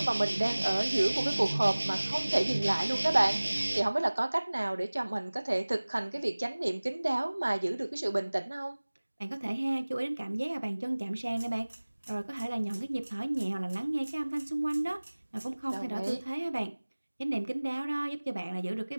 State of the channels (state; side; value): inverted; both; correlation -1.00